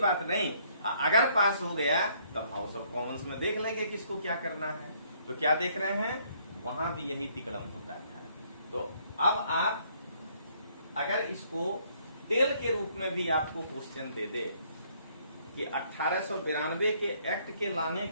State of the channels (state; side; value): inverted; both; correlation -0.66